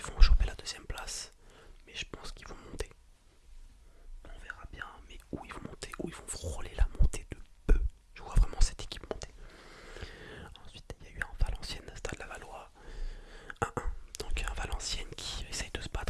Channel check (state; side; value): identical; both; correlation 1.00